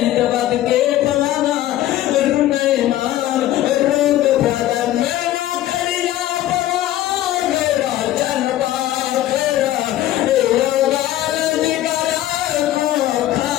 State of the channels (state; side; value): quieter; right; 13.9 dB